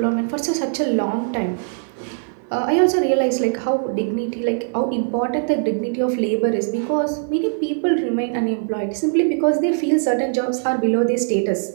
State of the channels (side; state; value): left; silent; 56 dB below the other